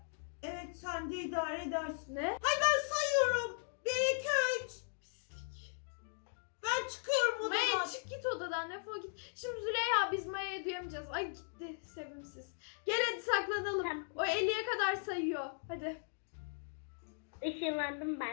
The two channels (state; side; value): silent; right; digital silence